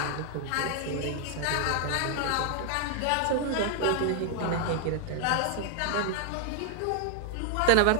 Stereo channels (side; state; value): both; different; correlation 0.00